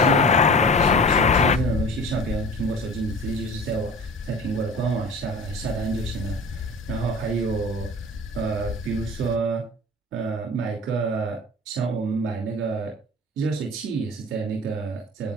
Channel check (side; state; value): both; normal; correlation 0.39